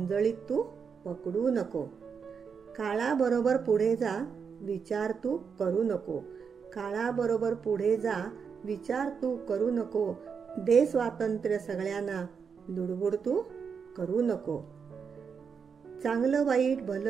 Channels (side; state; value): left; quieter; 6.2 dB